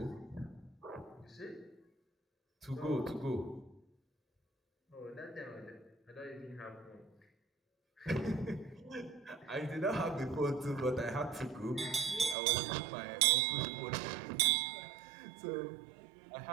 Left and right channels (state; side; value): drops out; left; at 12.4 s